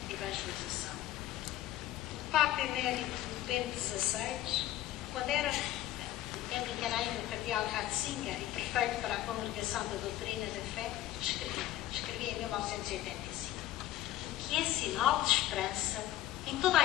e evangelização. O Papa Emérito Bento XVI, quando era tempo em que era ainda o cardeal Ratzinger e prefeito para a Congregação da Doutrina da Fé, escrevia em 1985: o que é sinal de esperança em toda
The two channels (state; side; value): quieter; right; 14.1 dB